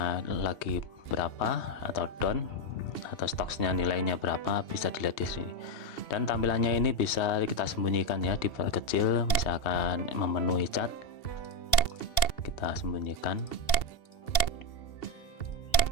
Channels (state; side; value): late; right; 2.7 ms